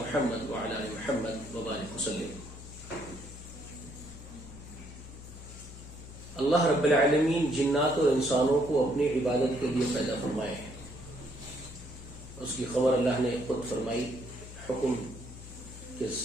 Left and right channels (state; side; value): noise; left; hum, 14 dB below the sound